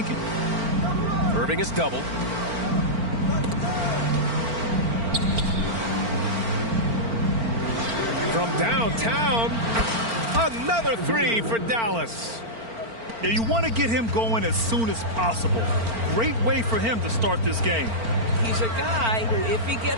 Irving is doubled. From downtown, another three for Dallas. Yeah, you want to get him going as soon as possible. Great way for him to start this game. He's a guy who, if he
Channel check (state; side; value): late; left; 4.4 ms